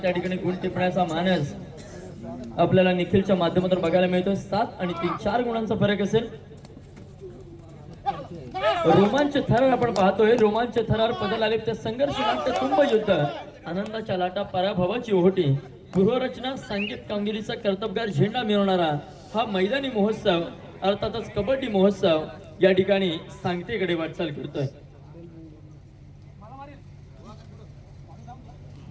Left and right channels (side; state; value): both; identical; correlation 1.00